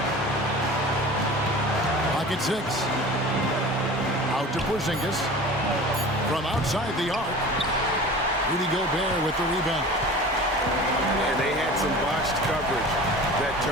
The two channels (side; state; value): both; normal; correlation 0.38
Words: Pocket 6. Out to Porzingis. From outside the arc. Rudy Gobert with the rebound. And they had some botched coverage that